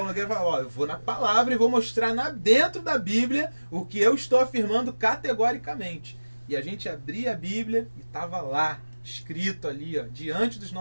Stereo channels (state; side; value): inverted; both; correlation -1.00